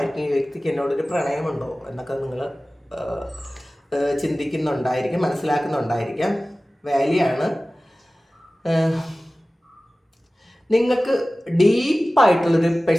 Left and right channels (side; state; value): both; normal; correlation 0.97